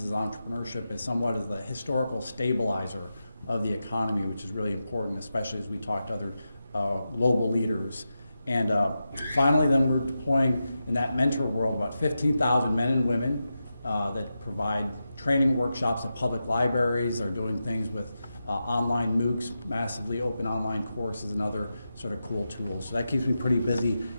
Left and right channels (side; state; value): both; inverted; correlation -0.90